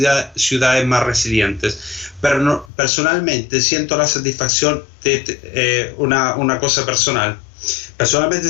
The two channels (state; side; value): drops out; right; at 2.7 s